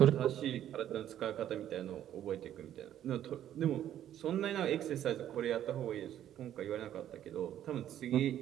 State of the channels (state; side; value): quieter; left; 11.2 dB